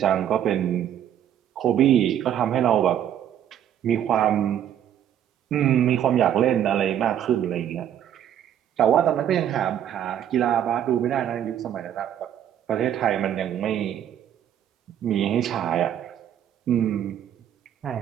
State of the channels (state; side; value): quieter; left; 10.2 dB